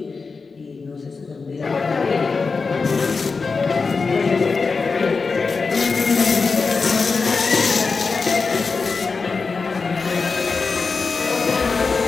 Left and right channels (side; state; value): right; quieter; 4.6 dB